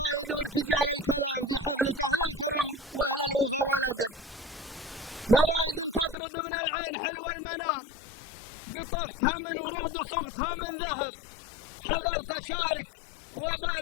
وارتجال الكلام في حفلة أهل الكرم وأهل الوفا والأدب. فرايد تطرد من العين حلو المنام، قطفتها من ورود وصغتها من ذهب، حضرت أشارك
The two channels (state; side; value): drops out; right; at 6.2 s